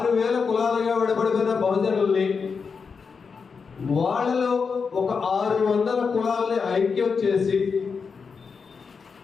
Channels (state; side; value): quieter; right; 5.4 dB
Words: కులాలుగా విడబడిపోయిన బహుజనుల్ని వాళ్ళలో ఒక 600 కులాలని ఐక్యం చేసి